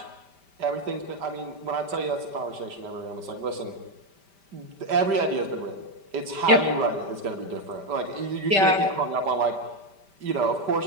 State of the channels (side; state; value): left; late; 5.1 ms